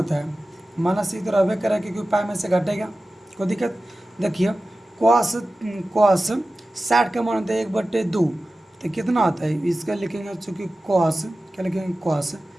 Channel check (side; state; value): both; normal; correlation 0.95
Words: है माइनस इधर रहबे करेगा क्योंकि पाई में से घटेगा, कोई दिक्कत। देखिए cos 60 का मान होता है 1/2, तो कितना होता है इसका लिखेंगे चूँकि cos क्या लिखेंगे cos,